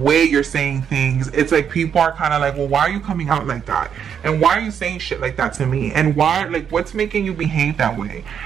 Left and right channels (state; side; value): quieter; left; 7.9 dB